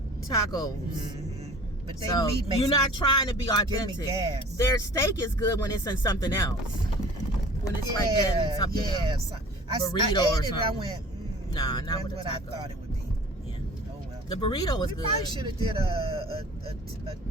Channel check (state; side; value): normal; both; correlation 0.45